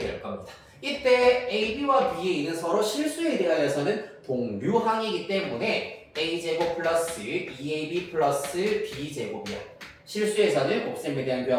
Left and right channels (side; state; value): both; identical; correlation 1.00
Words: 겁니다. 이때 AB와 BA는 서로 실수에 대하여서는 동류항이기 때문에 A제곱 플러스 2AB 플러스 B제곱이야. 실수에서는 곱셈에 대한